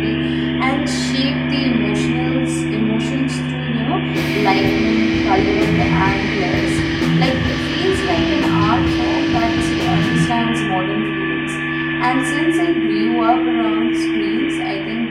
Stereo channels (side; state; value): both; identical; correlation 1.00